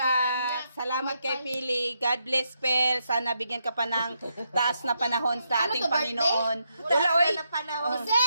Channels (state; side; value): inverted; both; correlation -0.81